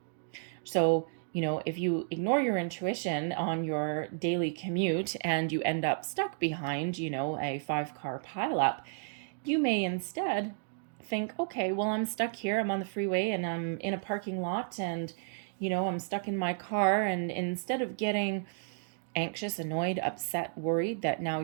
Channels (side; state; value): left; silent; digital silence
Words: So, if you ignore your intuition on your daily commute and you end up stuck behind, a 5-car pileup, you may instead think, okay, well, I'm stuck here. I'm on the freeway and I'm in a parking lot and, I'm stuck in my car. And instead of getting anxious, annoyed, upset, worried that now